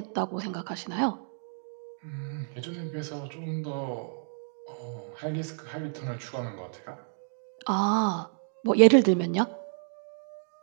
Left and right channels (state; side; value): silent; left; digital silence